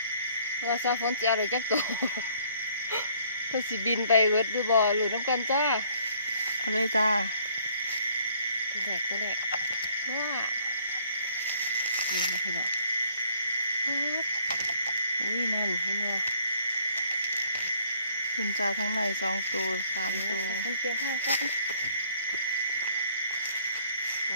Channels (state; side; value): inverted; both; correlation -0.61